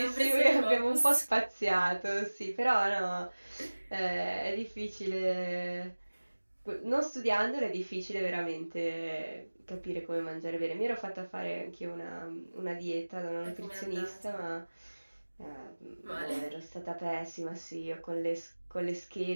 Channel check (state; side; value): inverted; both; correlation -1.00